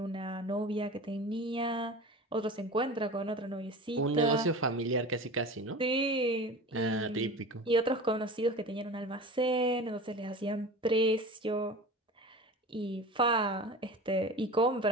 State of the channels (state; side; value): normal; both; correlation 0.34